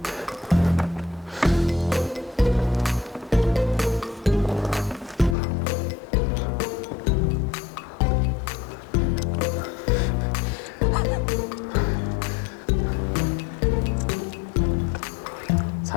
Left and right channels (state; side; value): drops out; right; at 5.4 s